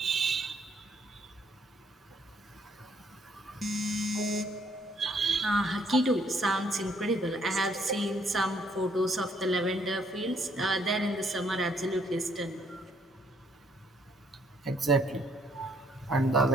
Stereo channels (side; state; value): both; normal; correlation 0.67